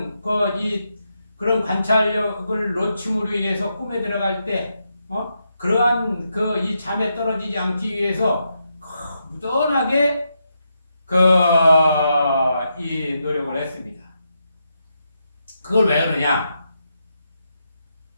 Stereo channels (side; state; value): both; inverted; correlation -0.83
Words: 그런 관찰력을 놓침으로 인해서 꿈에 들어갈 때 그러한 이 잠에 떨어지지 않기 위해서 무던하게 이 노력을 했습니다. 그걸 왜 그러냐?